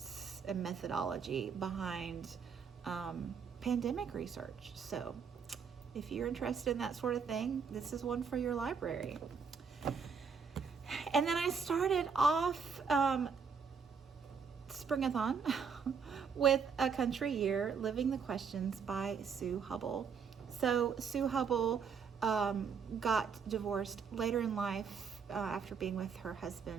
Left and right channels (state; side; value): quieter; left; 6.1 dB